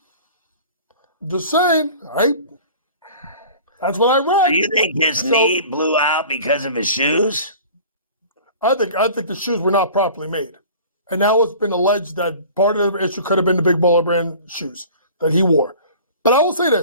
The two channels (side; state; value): both; inverted; correlation -0.43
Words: Just saying, right? That's what I read. Do you think his knee blew out because of his shoes? I think the shoes were not properly made. And now it's been alleged that part of the issue could have been the Big Baller brand shoes that he wore. But I will say